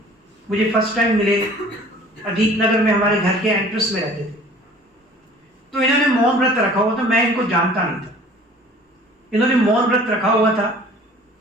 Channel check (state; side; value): normal; both; correlation 0.49